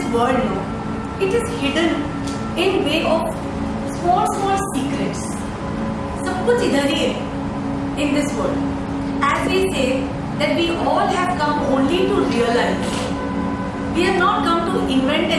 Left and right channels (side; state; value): both; identical; correlation 1.00